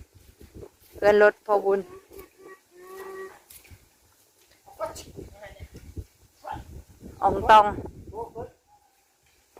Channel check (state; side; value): identical; both; correlation 1.00